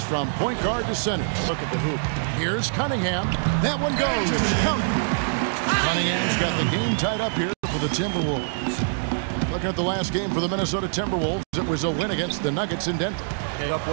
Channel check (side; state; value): left; silent; digital silence